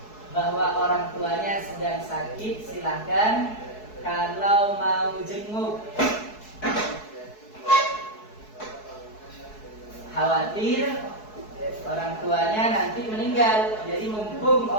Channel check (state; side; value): late; right; 4.7 ms